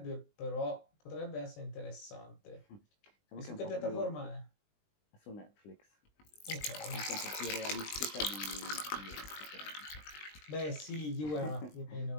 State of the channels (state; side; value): late; right; 20 ms